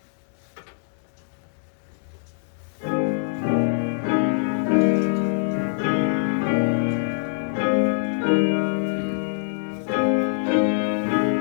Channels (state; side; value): silent; right; 63 dB below the other